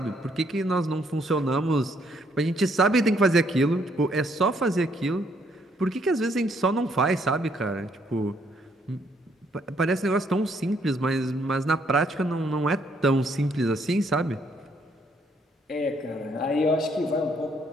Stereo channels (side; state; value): both; normal; correlation 0.69